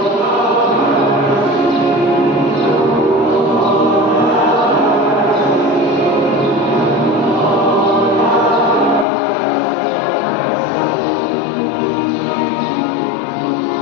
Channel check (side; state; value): right; drops out; at 9.1 s